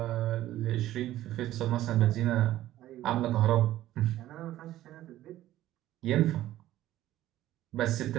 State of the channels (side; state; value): left; quieter; 14.2 dB